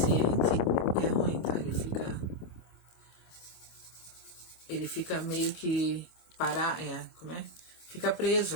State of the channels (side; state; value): right; late; 26 ms